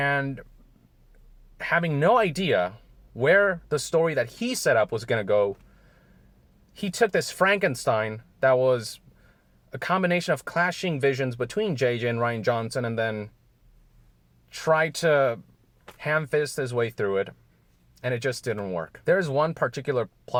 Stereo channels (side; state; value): both; identical; correlation 1.00